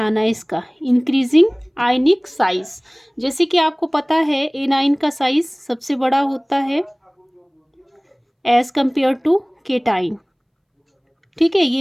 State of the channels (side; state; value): both; identical; correlation 1.00